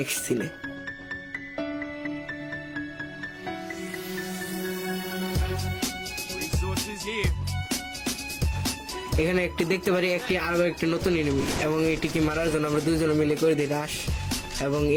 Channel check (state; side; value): identical; both; correlation 1.00